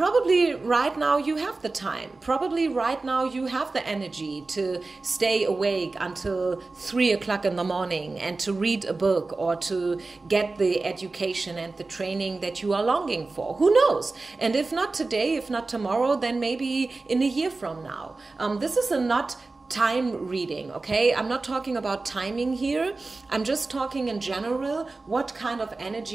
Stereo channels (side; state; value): left; quieter; 3.5 dB